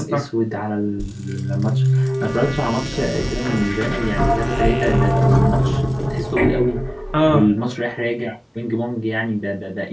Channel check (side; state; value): both; identical; correlation 1.00